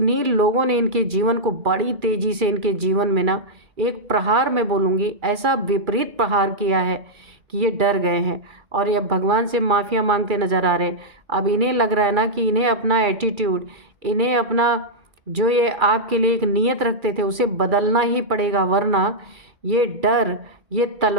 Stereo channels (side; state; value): left; late; 2.3 ms